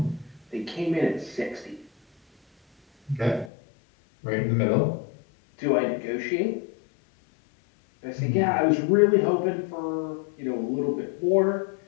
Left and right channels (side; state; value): right; drops out; at 3.5 s